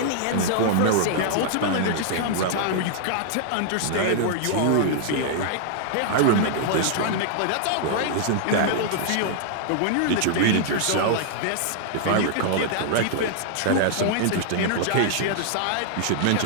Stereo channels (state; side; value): different; both; correlation -0.01